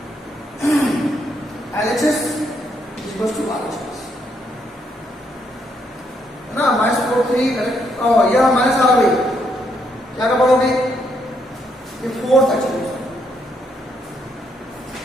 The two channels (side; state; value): both; normal; correlation 0.75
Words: LHS is equals to RHS. ना -4 3 correct. यह माइनस आ गई, क्या का पढ़ोगे? ये 4 तक चलेगा,